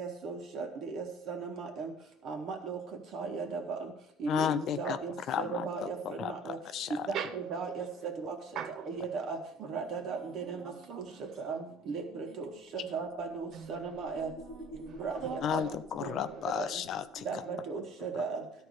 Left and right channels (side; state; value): both; normal; correlation 0.48